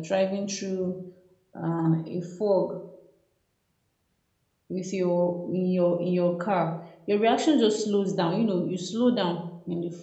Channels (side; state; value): both; identical; correlation 1.00